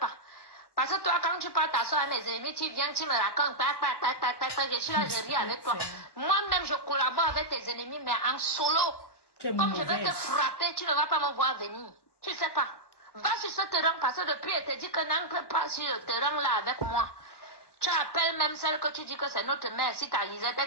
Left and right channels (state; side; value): late; right; 1.1 ms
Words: Parce que toi, quand tu parles t'asseoir avec mes ennemis, tu viens, tu me racontes, je suis là, je ris avec toi. Moi-même, je collabore avec tes ennemis, mais en solo. Comme je vais te frapper, tu ne vas pas me voir venir. Tu sais pas. Va sur ce terrain, parce que depuis, elle te dit que n'entre pas sur le terrain là avec moi. Tu appelles même celle que tu dis que c'est notre mère. Si ta Lisette, elle